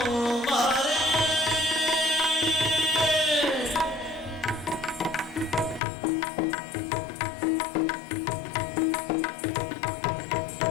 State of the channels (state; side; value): drops out; right; at 5.8 s